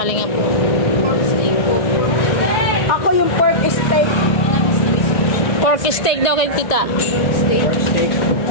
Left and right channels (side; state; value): right; late; 1.5 ms